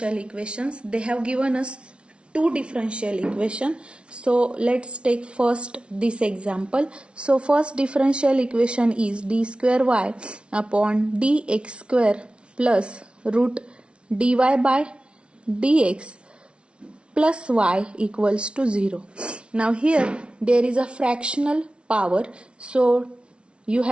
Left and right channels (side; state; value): left; late; 0.058 ms